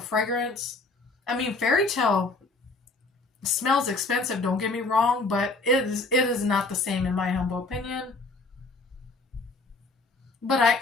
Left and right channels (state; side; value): quieter; right; 3.4 dB